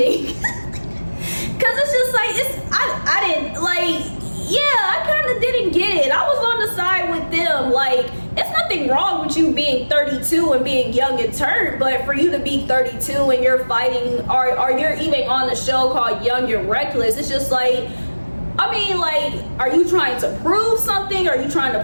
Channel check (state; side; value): inverted; both; correlation -1.00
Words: because it's just like, I didn't, like, yeah, I kind of didn't get it. I was on the side with them. Like, it's nothing wrong with you being 32 and being young and turned, but for you to be 32 and you're fighting, or you're even on the show called Young and Reckless, it's just like, I mean, like, are you trying to prove something? Are you trying